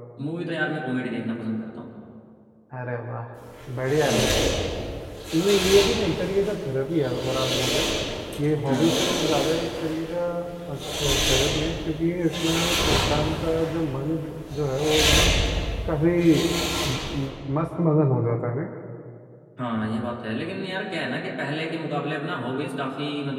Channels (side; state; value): both; identical; correlation 1.00